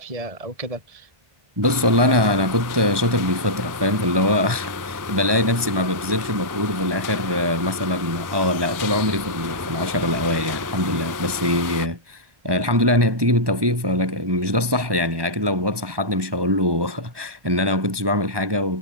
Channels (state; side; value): late; left; 1.2 ms